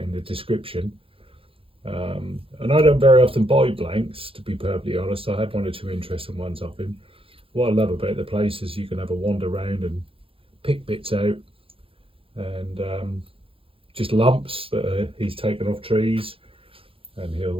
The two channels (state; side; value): late; left; 0.27 ms